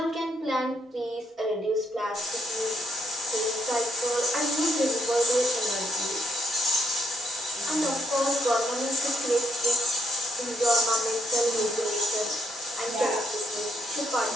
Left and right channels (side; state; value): both; normal; correlation 0.75